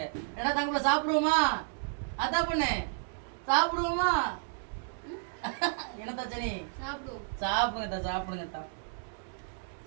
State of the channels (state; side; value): silent; left; digital silence